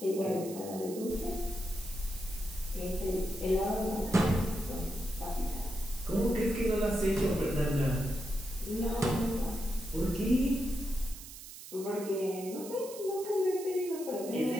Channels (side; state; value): right; noise; hiss, 14 dB below the sound